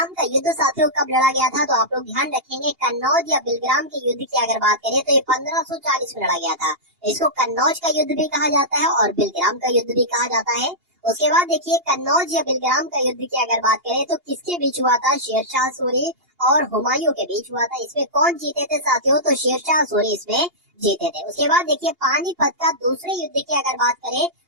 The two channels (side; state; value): left; late; 2.8 ms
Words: का युद्ध साथियों कब लड़ा गया था, तो आप लोग ध्यान रखेंगे, कन्नौज या बिलग्राम के युद्ध की अगर बात करें तो ये 1540 में लड़ा गया था। इसको कन्नौज का युद्ध भी कहा जाता है और बिलग्राम का युद्ध भी कहा जाता है। उसके बाद देखिए कन्नौज या बिलग्राम का युद्ध की अगर बात करें तो किसके बीच हुआ था, शेरशाह सूरी और हुमायूं के बीच हुआ था। इसमें कौन जीते थे साथियों, तो शेरशाह सूरी इसमें जीते थे। उसके बाद देखिए पानीपत का दूसरे युद्ध की अगर बात करें